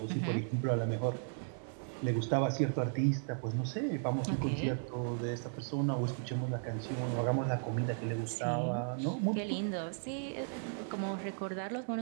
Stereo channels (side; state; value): left; silent; digital silence